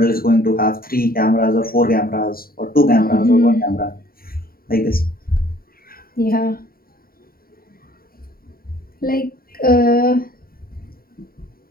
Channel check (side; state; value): right; late; 0.43 ms